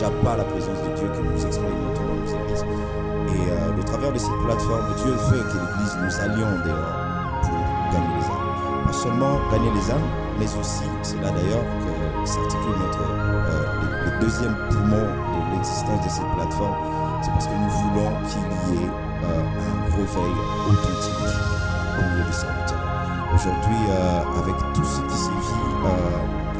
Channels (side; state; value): both; identical; correlation 1.00